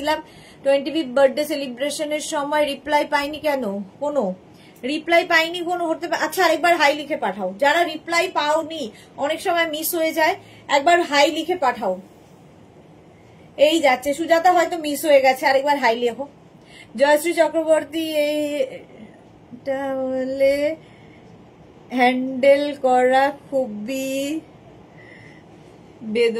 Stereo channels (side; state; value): both; identical; correlation 1.00